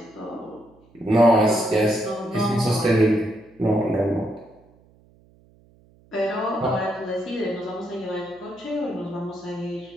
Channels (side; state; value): right; noise; hum, 30 dB below the sound